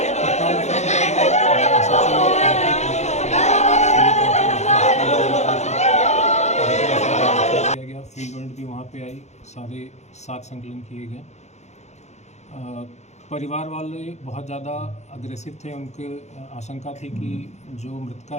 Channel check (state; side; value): late; right; 0.33 ms